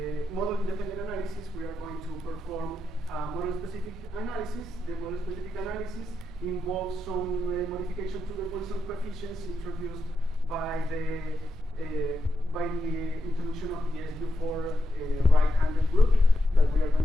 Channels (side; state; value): both; normal; correlation 0.85